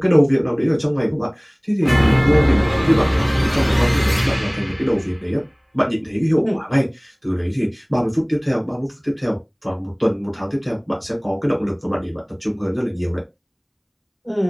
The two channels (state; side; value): identical; both; correlation 1.00